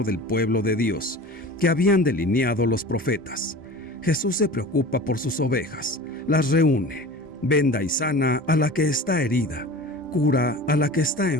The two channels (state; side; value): normal; both; correlation 0.37